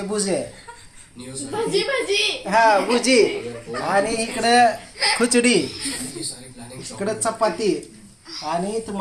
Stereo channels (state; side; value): identical; both; correlation 1.00